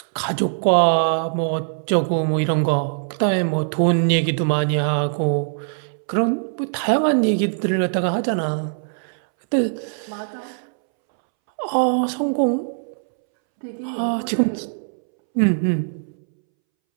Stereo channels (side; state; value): left; silent; 65 dB below the other